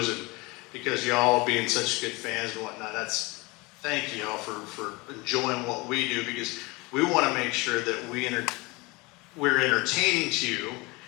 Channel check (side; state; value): right; quieter; 24.8 dB